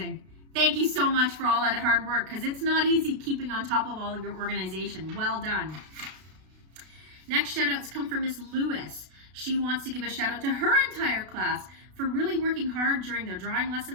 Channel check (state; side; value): late; left; 32 ms